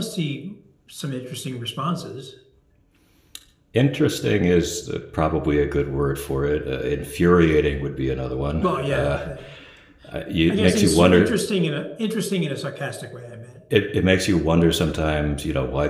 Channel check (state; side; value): identical; both; correlation 1.00